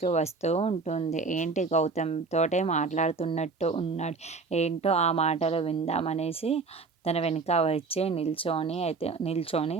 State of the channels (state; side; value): quieter; left; 4.3 dB